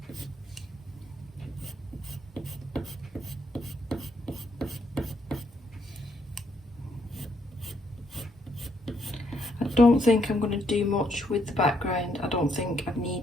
I don't think I'm going to do much with the background. I don't think I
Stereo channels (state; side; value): normal; both; correlation 0.74